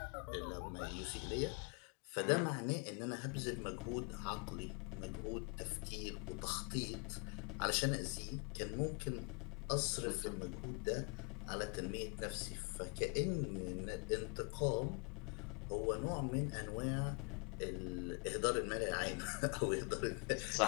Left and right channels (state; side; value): quieter; right; 34.6 dB